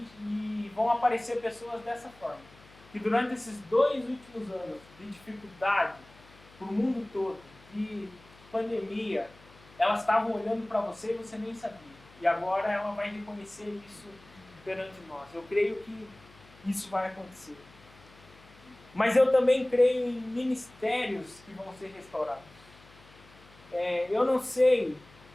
vão aparecer pessoas dessa forma. Que durante esses 2 últimos anos de dificuldade para o mundo todo, de pandemia, elas estavam olhando para você e você nem sabia. E agora ela vai reconhecer isso perante nós. Eu creio que isso vai acontecer. Mas eu também creio em ministérios que vão ser restaurados. Eu não sei,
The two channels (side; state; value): left; noise; hum, 24 dB below the sound